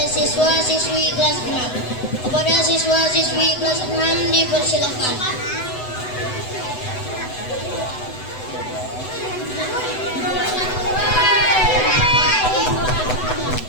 siswa-siswi kelas 6. Kepada siswa-siswi kelas 6 dipersilakan.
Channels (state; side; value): late; right; 7.9 ms